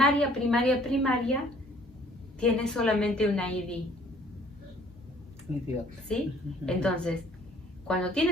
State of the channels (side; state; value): both; normal; correlation 0.57